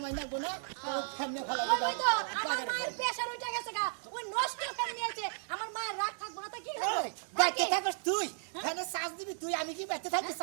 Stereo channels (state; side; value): silent; left; digital silence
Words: মাই নাকবো না ফ্যান নিয়ে ফেলা ওই তো আমার মায়ের প্রেসার উঠে গেছে গা ওই নষ্ট ফ্যান নিয়েছে আমার মায়ের রাগ থাকবো না তা কি হবে বাইতে থাকস তুই ফ্যানে চার্জ দিবি তুই আমি কি বাইতে থাকি